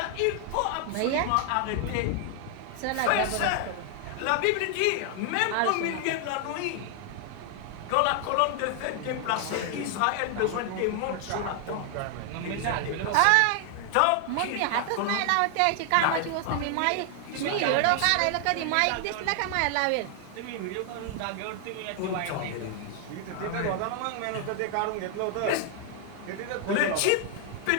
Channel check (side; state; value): both; different; correlation 0.00